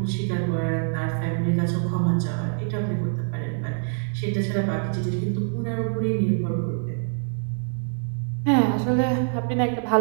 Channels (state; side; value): silent; left; digital silence